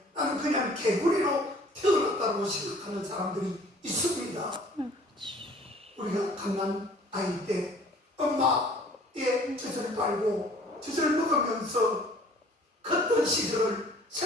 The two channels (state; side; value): normal; both; correlation 0.52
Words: 나는 그냥 개구리로 태어났다고 생각하는 사람들이 있습니다. 우리가 갓난 아이 때 엄마의 젖을 빨고 젖을 먹으면서 컸던 시절을